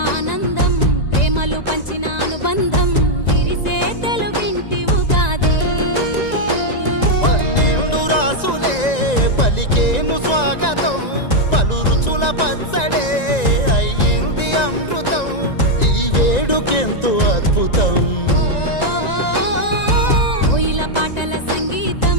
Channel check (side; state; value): right; late; 1.9 ms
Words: ఆనందం ప్రేమలు పంచిన అనుబంధం విరిసే తెలుగింటి ఉగాది 12 రాసులే పలికేను స్వాగతం పలు రుచుల పచ్చడే అయ్యింది అమృతం ఈ వేడుకెంతో అద్భుతం కోయిల పాటల సంగీతం